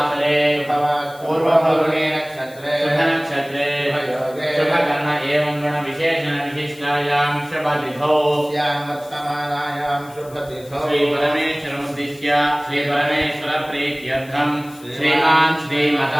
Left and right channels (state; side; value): noise; left; hiss, 23 dB below the sound